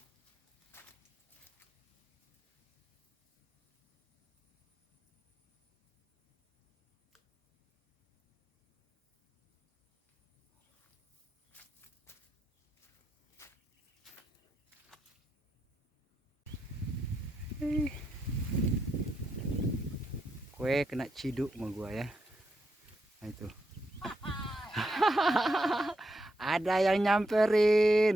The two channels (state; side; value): normal; both; correlation 0.82